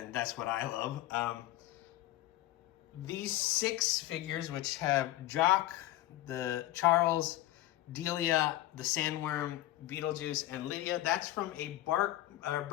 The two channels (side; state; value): right; quieter; 15.4 dB